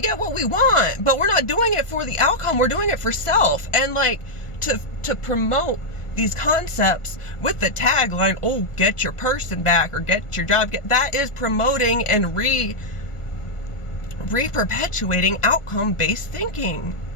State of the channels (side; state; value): right; late; 1.4 ms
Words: get what we want, but we're not doing it for the outcome. We're doing it for self. And like to promote these concepts with the tagline, oh, get your person back, or get your job. That is promoting and re-perpetuating outcome-based thinking.